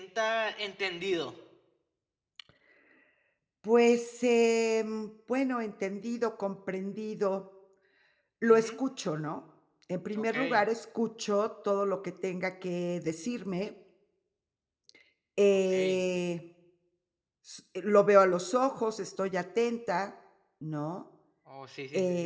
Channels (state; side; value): identical; both; correlation 1.00